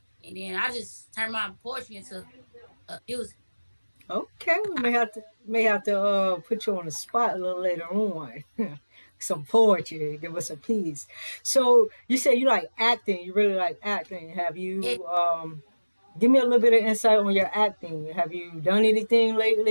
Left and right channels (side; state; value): both; inverted; correlation -1.00